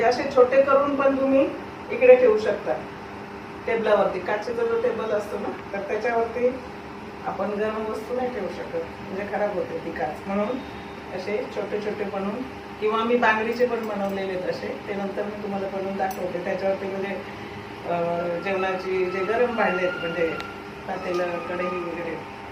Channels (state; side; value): identical; both; correlation 1.00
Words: असे छोटे करून पण तुम्ही इकडे ठेवू शकता टेबलावरती. काचेचा जो टेबल असतो ना तर त्याच्यावरती आपण गरम वस्तू नाही ठेवू शकत म्हणजे खराब होते ती काच. म्हणून असे छोटे छोटे बनवून किंवा मी बांगडीचे पण बनवलेले असे ते नंतर मी तुम्हाला बनवून दाखवते. त्याच्यावरती म्हणजे जेवणाची जे गरम भांडे आहेत म्हणजे पातेलं कढई वगैरे